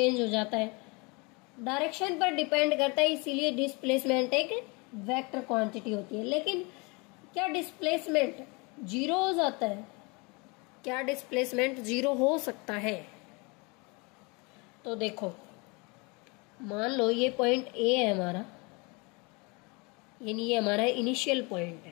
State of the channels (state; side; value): quieter; right; 28.8 dB